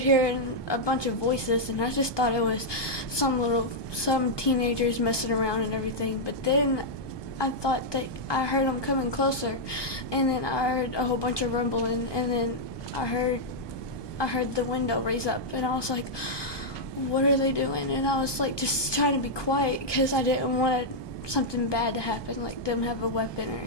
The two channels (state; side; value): late; right; 1.2 ms